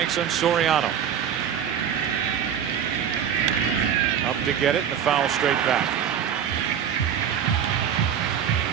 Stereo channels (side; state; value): left; quieter; 8.7 dB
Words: on Soriano. Up to get it, and the foul straight back.